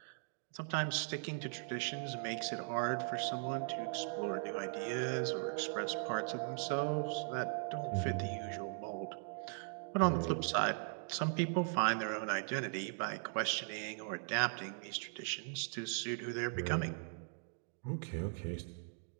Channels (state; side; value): silent; left; 52 dB below the other